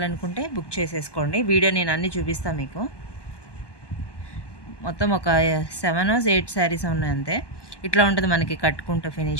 బుక్ చేసేసుకోండి. వీడియో నేను అన్నీ చూపిస్తాను మీకు. మొత్తం ఒక 7 or 8 శారీస్ ఉన్నాయి అంతే. ఇట్లా ఉంటుంది మనకి కట్టుకుంటే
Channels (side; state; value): right; late; 1.2 ms